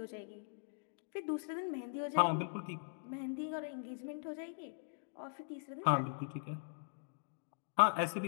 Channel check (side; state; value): right; silent; digital silence